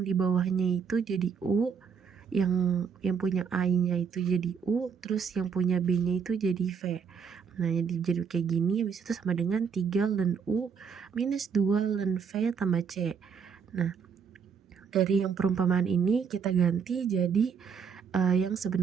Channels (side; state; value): left; quieter; 6.5 dB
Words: di bawahnya itu jadi U, yang punya A-nya itu jadi U, terus yang punya B-nya itu jadi V. Nah, jadi kayak gini, habis itu sama dengan 3 ln U minus 2 ln V tambah C. Nah, dari yang perumpamaan ini kita ganti jadi yang